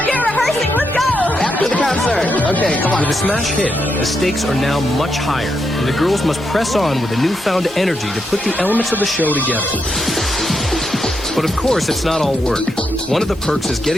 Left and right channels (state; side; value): normal; both; correlation 0.82